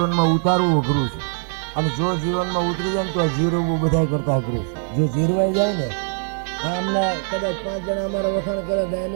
ઉતારવું અઘરું છે. અને જો જીવનમાં ઉતરી જાય ને તો જીરવવું બધા કરતા અઘરું છે. જો જીરવાઈ જાય ને, આમને કદાચ 5 જણા અમારા વખાણ કરે તો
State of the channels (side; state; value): left; silent; 55 dB below the other